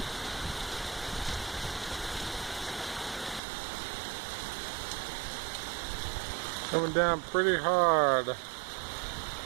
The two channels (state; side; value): drops out; left; at 3.4 s